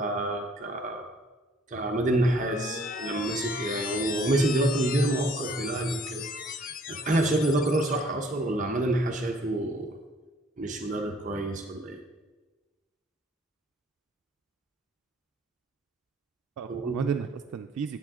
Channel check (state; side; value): normal; both; correlation 0.59